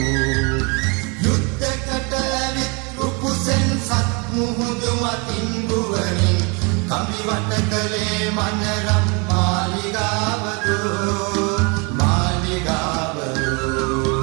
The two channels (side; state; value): left; quieter; 31.5 dB